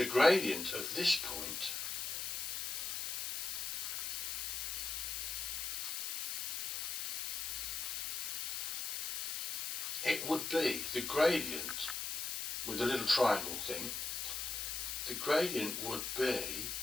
gradient of this point, it would be the gradient with the little triangle thing. The gradient would be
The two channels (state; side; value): noise; left; hiss, 2 dB below the sound